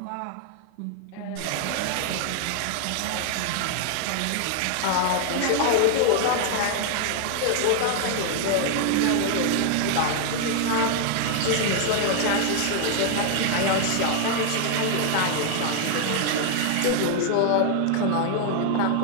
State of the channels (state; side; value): different; both; correlation 0.00